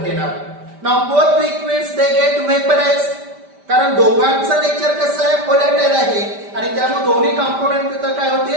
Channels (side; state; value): left; late; 5.1 ms